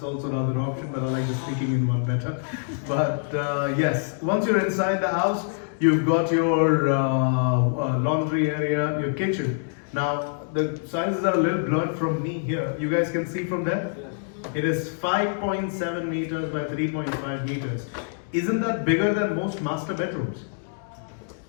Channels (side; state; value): right; silent; digital silence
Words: also another option, but I like the sneaking in one better. But yes, once you're inside the house, you've got your laundry area, your kitchen. Now, the sizes are a little blurred from me here. You guys can see from there? It is 5.7 meters by 3.5 meters. Isn't that bigger than most master bedrooms?